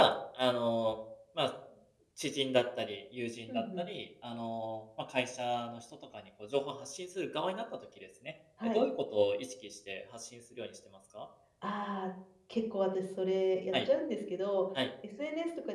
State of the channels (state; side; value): identical; both; correlation 1.00